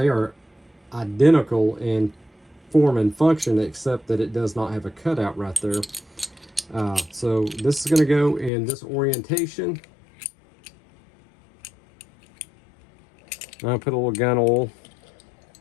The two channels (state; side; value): drops out; right; at 8.5 s